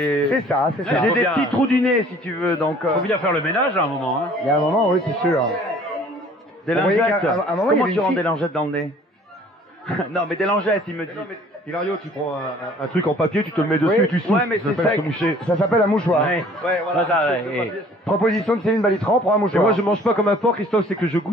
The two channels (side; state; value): both; normal; correlation 0.53